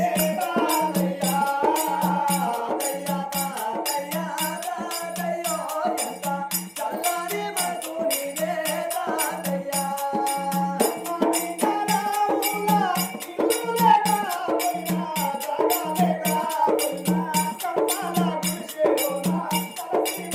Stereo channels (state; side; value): identical; both; correlation 1.00